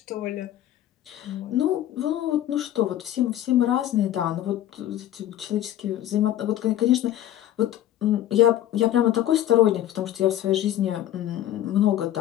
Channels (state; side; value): quieter; right; 12.5 dB